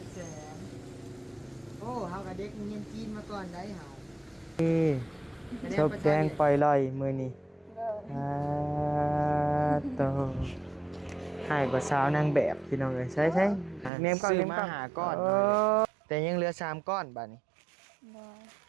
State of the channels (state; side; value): drops out; left; at 13.9 s